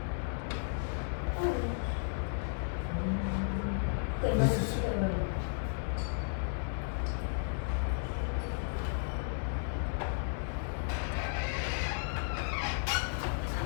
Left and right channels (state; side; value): silent; right; digital silence